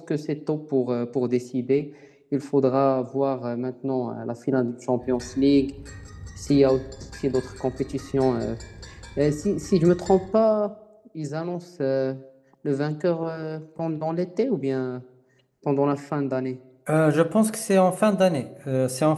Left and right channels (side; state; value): both; identical; correlation 1.00